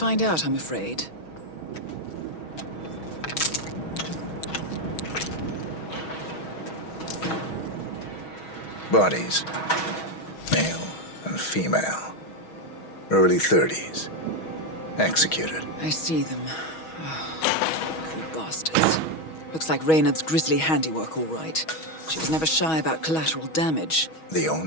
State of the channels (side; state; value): right; late; 6.3 ms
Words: out, I'm afraid. Bodies. Male and female. Early 30s. Executed. I see them. Oh, poor bastards. Looks like Reynard's grisly handiwork, all right. She was never shy about collateral damage. The